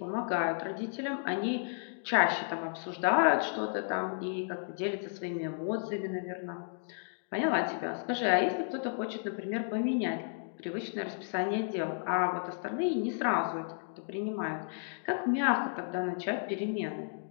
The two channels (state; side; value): silent; right; digital silence